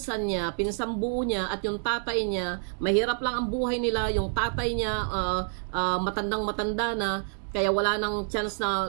buo niya at yung tatay niya, mahirap lang ang buhay nila, yung tatay niya matandang-matanda na, kaya wala nang chance na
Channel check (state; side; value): silent; left; digital silence